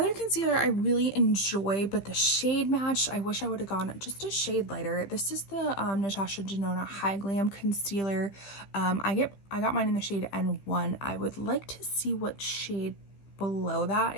concealer I really enjoy, but the shade match, I wish I would have gone just a shade lighter. This is the Natasha Denona High Glam Concealer. I got mine in the shade N1. I would like to see what shade below that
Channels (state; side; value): late; right; 15 ms